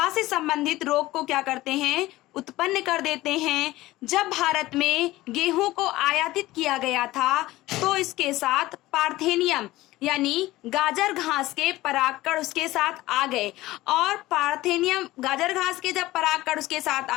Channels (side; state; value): right; quieter; 17.6 dB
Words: से संबंधित रोग को क्या करते हैं, उत्पन्न कर देते हैं। जब भारत में गेहूं को आयातित किया गया था तो इसके साथ पार्थेनियम यानी गाजर घास के परागकण उसके साथ आ गए, और पार्थेनियम गाजर घास के जब परागकण उसके साथ